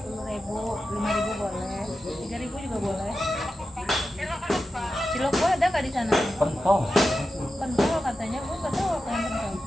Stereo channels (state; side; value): normal; both; correlation 0.91